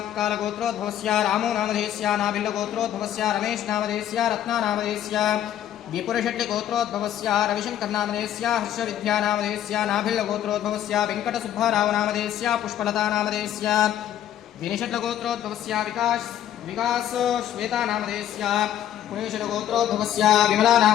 उत्कालगोत्रोद्भवस्य रामोनामधेयस्य नाभिल्लगोत्रोद्भवस्य रमेशनामधेयस्य रत्नानामधेयस्य विपुरशेट्टिगोत्रोद्भवस्य रविशङ्करनामधेयस्य हर्षविद्यानामधेयस्य नाभिल्लगोत्रोद्भवस्य वेङ्कटसुब्बारावनामधेयस्य पुष्पलतानामधेयस्य विनिषट्लगोत्रोद्भवस्य विकासश्वेतानामधेयस्य पुणेशलगोत्रोद्भवस्य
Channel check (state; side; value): quieter; right; 11.2 dB